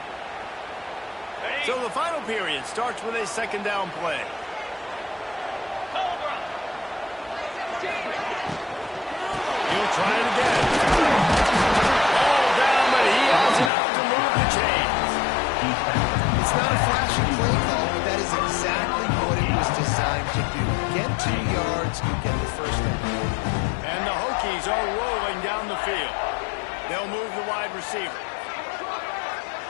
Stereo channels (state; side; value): drops out; right; at 13.7 s